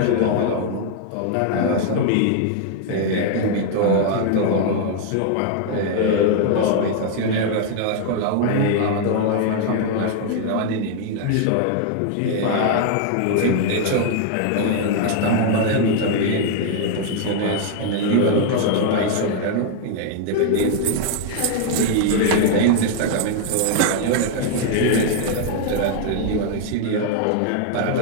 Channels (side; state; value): both; different; correlation 0.00